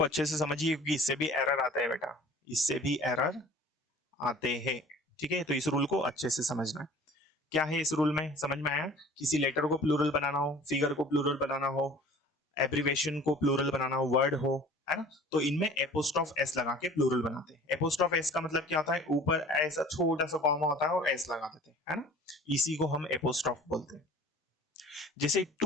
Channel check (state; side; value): normal; both; correlation 0.47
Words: अच्छे से समझिए क्योंकि इससे भी एरर आता है बेटा, इससे भी एरर आते हैं। ठीक है, तो इस रूल को अच्छे से समझना है। क्या है इस रूल में, समझ में आया, किसी लेटर को प्लूरल बनाना हो, फिगर को प्लूरल बनाना हो, एब्रीवेशन को प्लूरल बनाना हो, वर्ड हो, है ना, तो इनमें एपोस्ट्रोफ एस लगा के प्लूरल बनाते हैं। एपोस्ट्रोफ एस का मतलब क्या होता है, ऊपर ऐसा छोटा सा कॉमा होता है और एस लगा देते हैं, है ना, इसी को हम एपोस्ट्रोफ बोलते हैं। जैसे